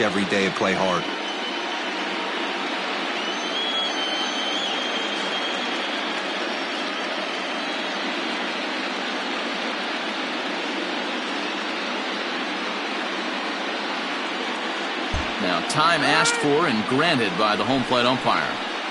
every day and play hard. Now time asked for and granted by the home plate umpire.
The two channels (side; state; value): both; identical; correlation 1.00